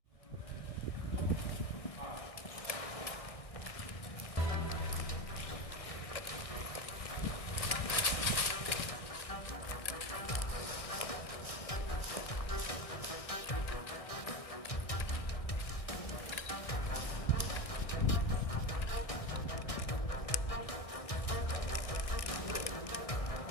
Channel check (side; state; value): right; late; 1.6 ms